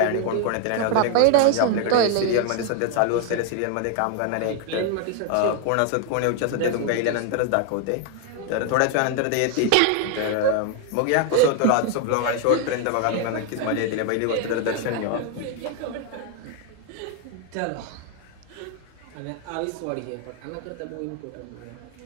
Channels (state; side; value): different; both; correlation 0.00